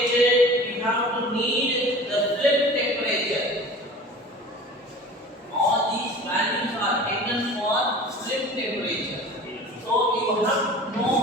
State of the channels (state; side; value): normal; both; correlation 0.40